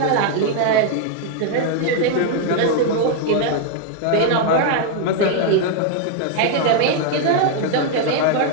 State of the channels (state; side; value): different; both; correlation 0.00